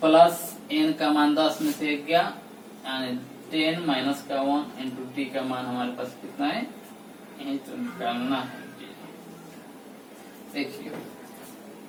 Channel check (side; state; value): both; identical; correlation 1.00